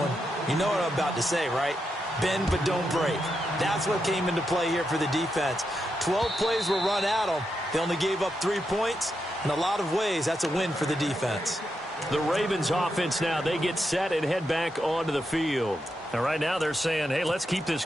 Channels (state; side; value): normal; both; correlation 0.85